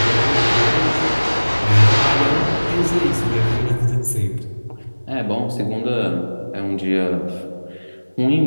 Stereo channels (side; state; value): both; inverted; correlation -1.00